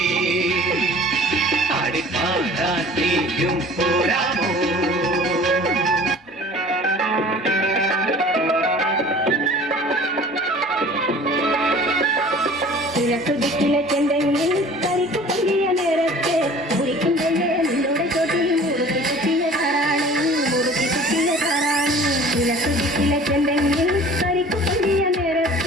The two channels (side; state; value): both; normal; correlation 0.46